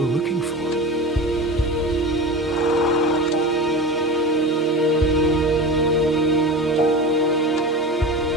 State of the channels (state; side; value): normal; both; correlation 0.29